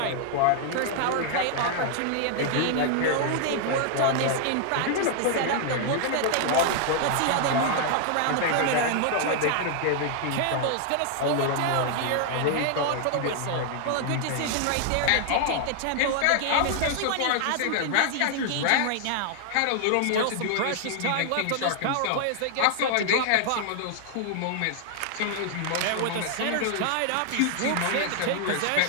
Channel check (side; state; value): both; different; correlation 0.00